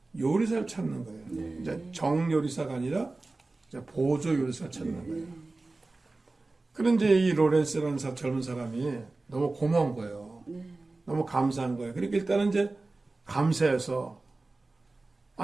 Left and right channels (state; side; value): quieter; left; 3.3 dB